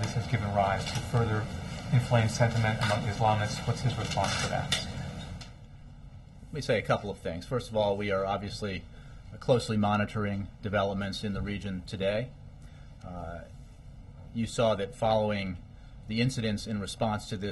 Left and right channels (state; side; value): identical; both; correlation 1.00